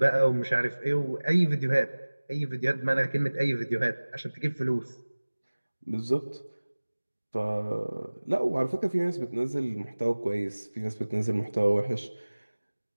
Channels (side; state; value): both; inverted; correlation -1.00